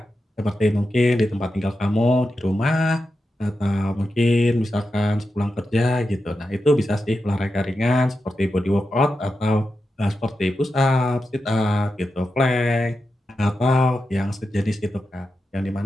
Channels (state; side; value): normal; both; correlation 0.89